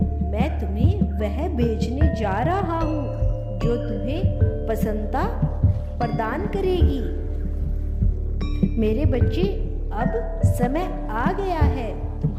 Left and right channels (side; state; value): both; identical; correlation 1.00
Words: मैं तुम्हें वह भेजने जा रहा हूँ जो तुम्हें प्रसन्नता प्रदान करेगी। मेरे बच्चे, अब समय आ गया है